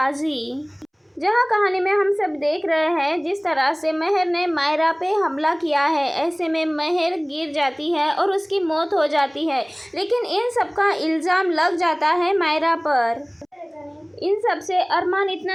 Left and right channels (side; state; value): both; identical; correlation 1.00